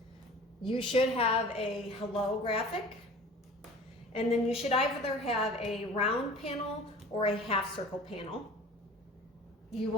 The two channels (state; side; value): normal; both; correlation 0.42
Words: You should have a hello graphic, and then you should either have a round panel or a half circle panel. You